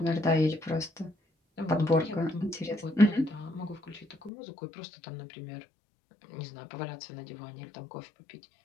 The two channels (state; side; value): drops out; right; at 4.3 s